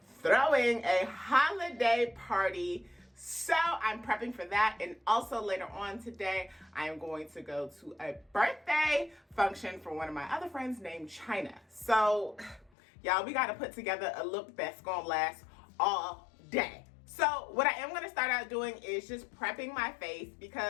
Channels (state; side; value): drops out; right; at 12.7 s